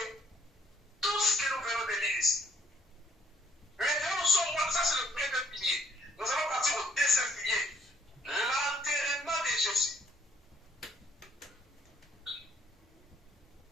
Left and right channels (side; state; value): both; normal; correlation 0.64